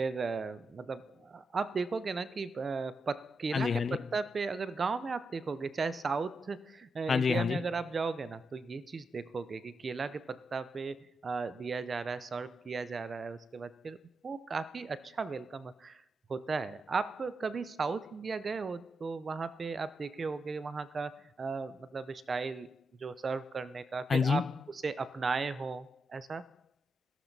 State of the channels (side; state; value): both; normal; correlation 0.85